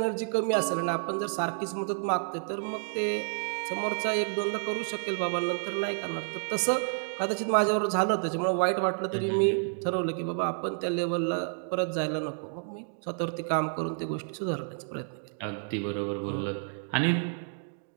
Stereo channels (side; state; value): left; silent; 58 dB below the other